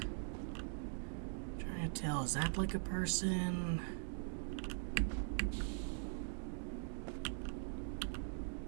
Trying to tell, is that like a person?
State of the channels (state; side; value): silent; left; digital silence